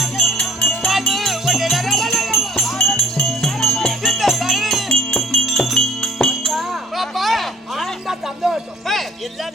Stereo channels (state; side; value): normal; both; correlation 0.59